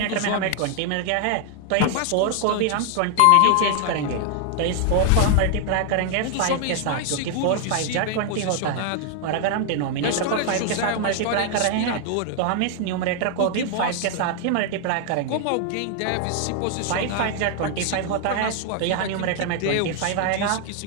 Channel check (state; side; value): different; both; correlation 0.00